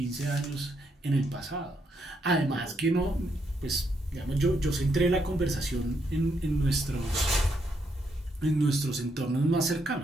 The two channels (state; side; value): normal; both; correlation 0.77